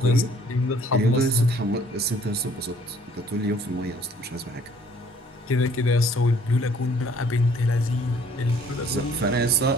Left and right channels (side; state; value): both; normal; correlation 0.58